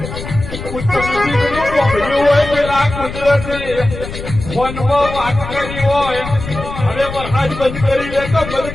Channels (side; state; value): left; noise; rumble, 9 dB below the sound